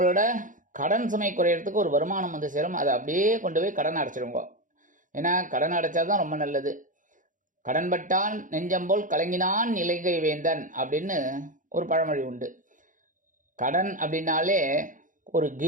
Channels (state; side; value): late; left; 0.38 ms